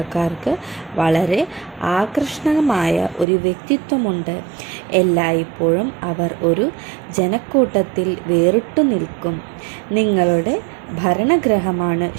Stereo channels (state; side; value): drops out; left; at 3.2 s